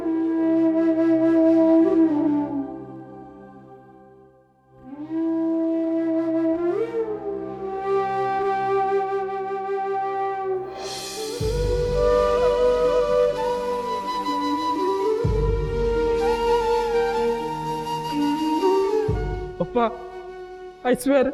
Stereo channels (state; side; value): identical; both; correlation 1.00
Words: ಪಪ್ಪ ಐ ಸ್ವೇರ್